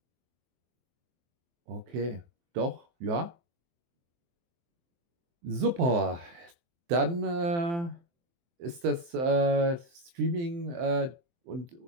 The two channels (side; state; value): left; late; 23 ms